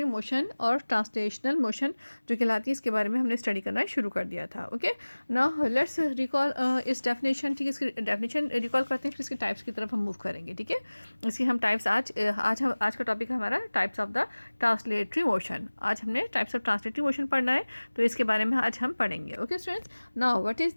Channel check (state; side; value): inverted; both; correlation -1.00